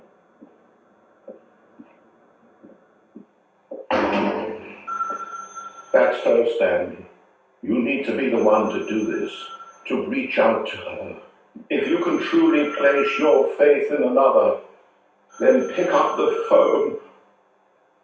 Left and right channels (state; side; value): identical; both; correlation 1.00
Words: That's her, Stanley. You need to be the one to do this, to reach out to her. If you can truly place your faith in another, then pick up the phone.